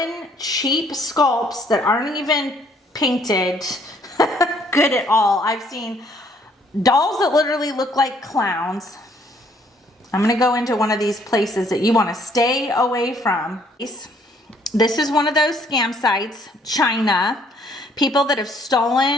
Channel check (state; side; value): normal; both; correlation 0.65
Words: cheap sculpts that aren't even painted good at all. I've seen dolls that literally look like clowns. I'm going to go into one of these places that you want to stay away from. This is one of those scam sites, China. People that have